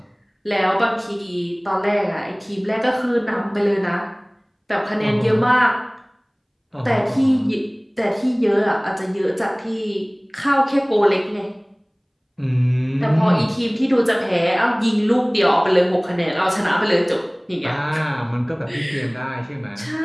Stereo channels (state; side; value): identical; both; correlation 1.00